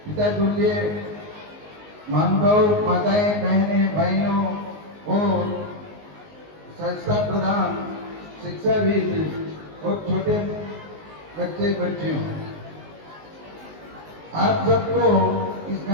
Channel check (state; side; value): late; left; 19 ms